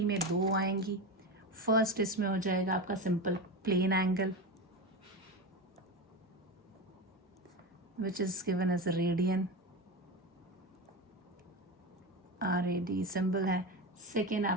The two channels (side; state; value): both; normal; correlation 0.21